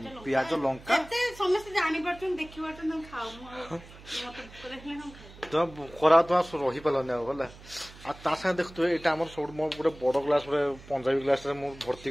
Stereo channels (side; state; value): right; noise; hum, 19 dB below the sound